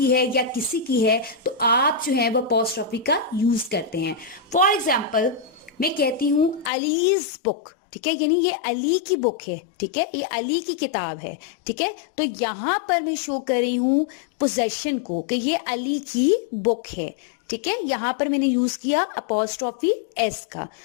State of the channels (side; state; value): right; drops out; at 6.7 s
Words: है या किसी की है, तो आप जो है वो अपॉस्ट्रोफी का यूज करते हैं। फॉर एग्जाम्पल मैं कहती हूं अलीज बुक, ठीक है, यानी ये अली की बुक है, ठीक है, ये अली की किताब है, ठीक है। तो यहां पर मैं शो कर रही हूं पोजेशन को कि ये अली की बुक है, ठीक है। यहां पर मैंने यूज किया अपॉस्ट्रोफी एस का।